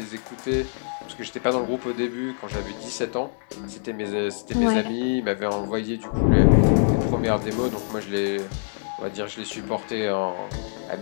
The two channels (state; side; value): silent; right; digital silence